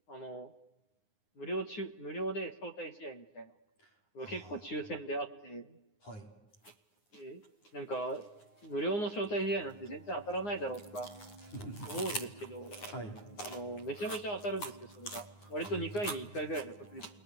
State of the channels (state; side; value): late; right; 9.7 ms